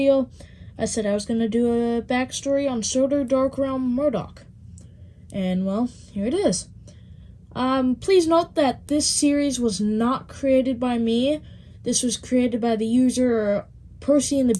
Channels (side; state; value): both; identical; correlation 1.00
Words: I said I was going to do a backstory on Sodor Dark Realm Murdoch. And well, here it is. Please note that this series was not created by me. This was created by the user Percy and the